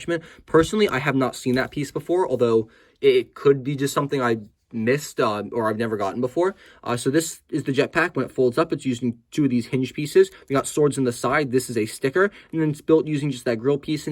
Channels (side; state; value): both; identical; correlation 1.00